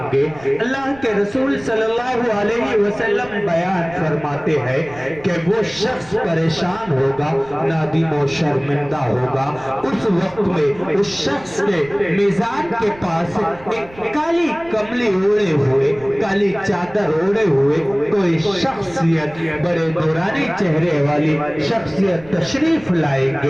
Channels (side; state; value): right; noise; rumble, 22 dB below the sound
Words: گے. اللہ کے رسول صلی اللہ علیہ وسلم بیان فرماتے ہیں کہ وہ شخص پریشان ہوگا، نادم و شرمندہ ہوگا. اس وقت میں اس شخص کے میزان کے پاس ایک کالی کملی اوڑے ہوئے، کالی چادر اوڑے ہوئے کوئی شخصیت، بڑے نورانی چہرے والی شخصیت تشریف لائیں